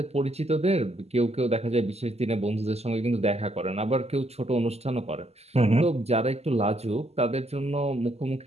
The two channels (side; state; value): left; late; 0.30 ms